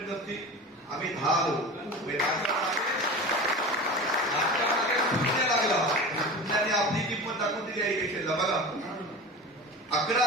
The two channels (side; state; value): both; normal; correlation 0.33